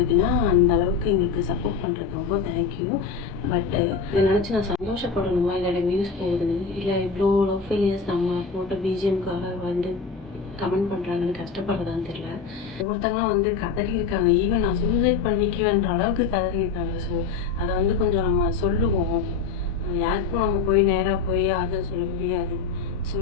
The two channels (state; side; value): quieter; right; 5.2 dB